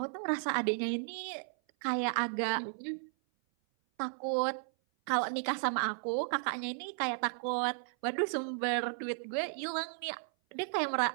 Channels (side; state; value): left; silent; 55 dB below the other